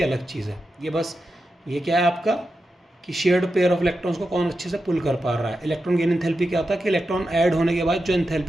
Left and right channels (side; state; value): both; normal; correlation 0.89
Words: अलग चीज़ है। ये बस ये क्या है आपका कि शेयर्ड पेयर ऑफ इलेक्ट्रॉन्स को कौन अच्छे से पुल कर पा रहा है। इलेक्ट्रॉन गेन एंथैल्पी क्या होता है कि इलेक्ट्रॉन ऐड होने के बाद जो